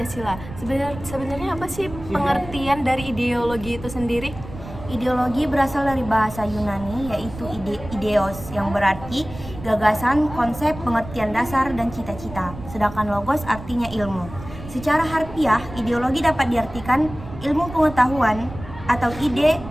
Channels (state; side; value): noise; right; rumble, 13 dB below the sound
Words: Sebenarnya apa sih pengertian dari ideologi itu sendiri? Ideologi berasal dari bahasa Yunani, yaitu ideos, yang berarti gagasan, konsep, pengertian dasar, dan cita-cita. Sedangkan logos artinya ilmu. Secara harfiah, ideologi dapat diartikan ilmu pengetahuan atau ide